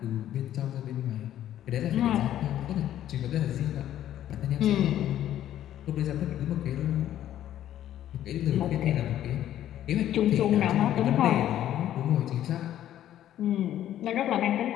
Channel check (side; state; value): right; quieter; 11.9 dB